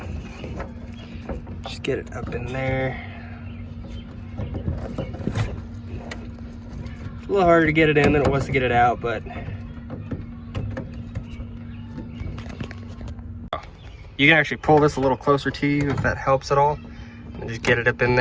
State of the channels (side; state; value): both; identical; correlation 1.00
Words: Just get it up in there. A little harder to get it in than it was to get it out, but you can actually pull this a little closer to you if that helps at all, and just get it up in